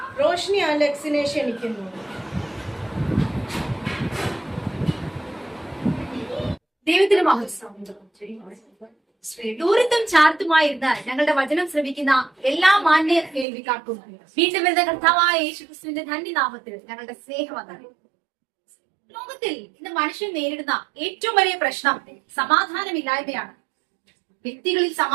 റോഷ്നി അലക്സിനെ ക്ഷണിക്കുന്നു. ദൈവത്തിന് ദൂരത്തും ചാർത്തുമായിരുന്ന ഞങ്ങളുടെ വചനം ശ്രമിക്കുന്ന എല്ലാ മാന്യ കേൾവിക്കാർക്കും വീണ്ടും വരുന്ന കർത്താവായ യേശുക്രിസ്തുവിന്റെ ധന്യനാമത്തിൽ ഞങ്ങളുടെ സ്നേഹവന്ദനം. ലോകത്തിൽ ഇന്ന് മനുഷ്യൻ നേരിടുന്ന ഏറ്റവും വലിയ പ്രശ്നം സമാധാനമില്ലായ്മയാണ്. വ്യക്തികളിൽ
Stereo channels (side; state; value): left; drops out; at 13.5 s